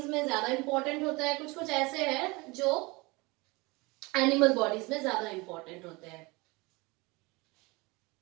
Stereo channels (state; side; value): quieter; left; 24.8 dB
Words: में ज्यादा इंपॉर्टेंट होता है, कुछ ऐसे हैं जो एनिमल बॉडीज में ज्यादा इंपॉर्टेंट होते हैं.